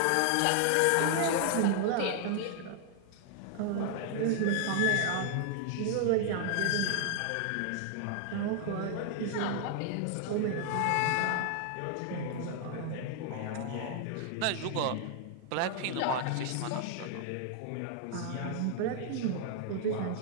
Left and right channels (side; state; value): both; different; correlation 0.00